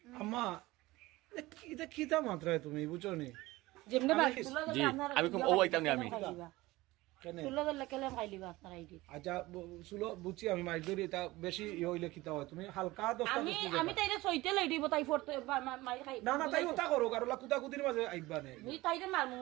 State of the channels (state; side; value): quieter; left; 19.5 dB